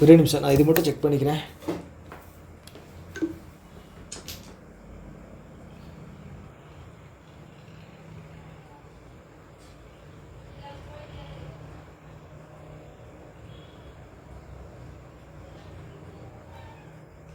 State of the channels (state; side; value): identical; both; correlation 1.00